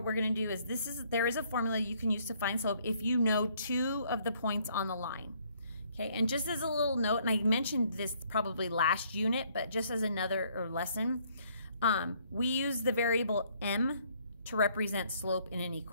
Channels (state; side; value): inverted; both; correlation -0.65